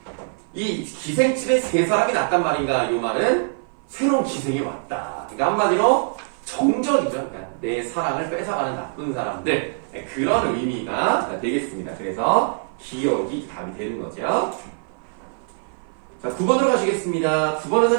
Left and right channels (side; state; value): left; silent; 56 dB below the other